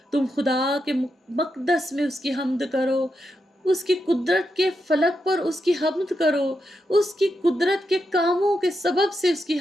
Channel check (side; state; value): both; normal; correlation 0.85